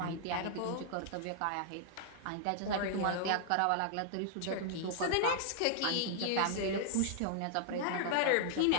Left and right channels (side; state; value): both; different; correlation -0.01